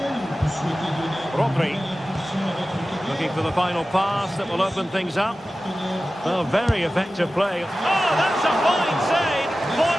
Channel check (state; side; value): normal; both; correlation 0.95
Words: Rodri. Looking for the final pass that will open things up. Oh, very effective play. Oh, that's a fine save.